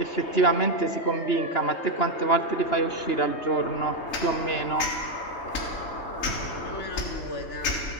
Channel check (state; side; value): late; right; 3.8 ms